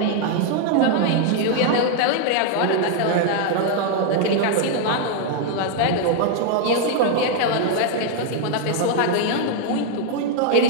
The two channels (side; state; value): both; different; correlation 0.00